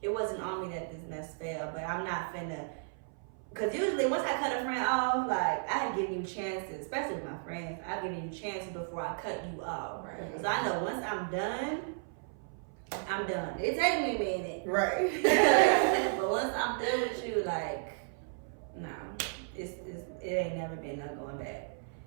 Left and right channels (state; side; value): silent; left; 55 dB below the other